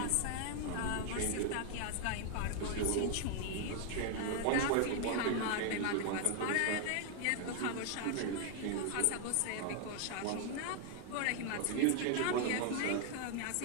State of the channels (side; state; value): both; different; correlation 0.00